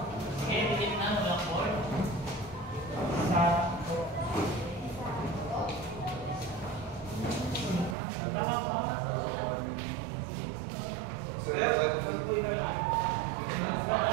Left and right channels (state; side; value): drops out; left; at 8.0 s